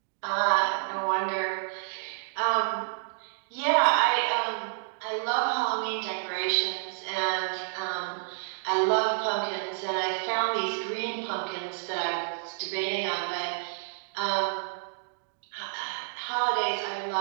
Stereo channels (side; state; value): left; silent; digital silence